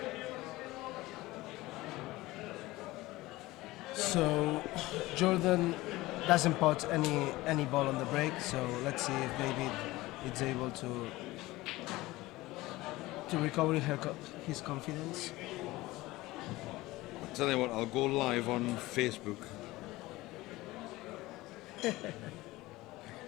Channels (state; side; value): quieter; right; 19.1 dB